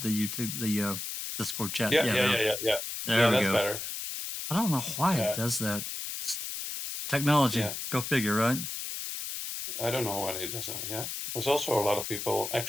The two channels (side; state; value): left; noise; hiss, 6 dB below the sound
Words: the Discord chat. Yeah. There we that's go. Better. I don't know why it does that. It's technology. Yeah. Go figure, right? I don't know why it does that. Yeah. There's also a lot of people